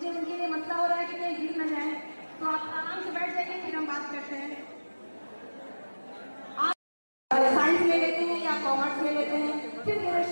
उनके लिए मसला हो रहा है कि कहीं गिर न जाए, तो आप आराम से बैठ जाइए, फिर हम बात करते हैं। आप साइंस ले लेते हैं या कॉमर्स ले लेते हैं, फिर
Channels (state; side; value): inverted; both; correlation -1.00